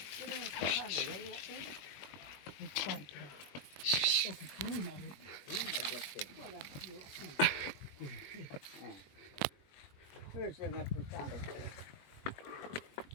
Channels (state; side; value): late; right; 21 ms